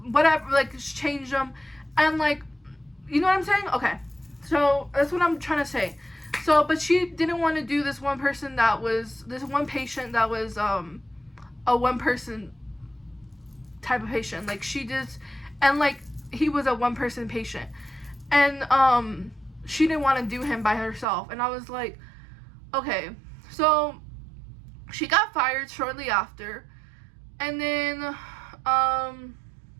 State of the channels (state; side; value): drops out; left; at 21.1 s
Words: like change them, and like, you know what I'm saying? Okay, so that's what I'm trying to say. So but she didn't want to do this one patient that was a one person type of patient, like she just, and like he was a one person patient, and she didn't want to do him by herself. And I was like, okay. So she got fired shortly after, and then